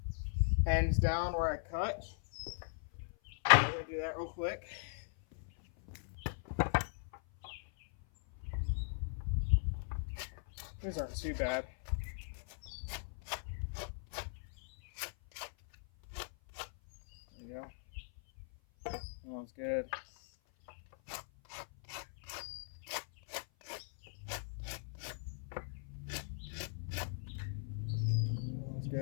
ends down where I cut. I'm going to do that real quick. These aren't too bad. There you go. That's good. That's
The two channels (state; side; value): silent; right; 52 dB below the other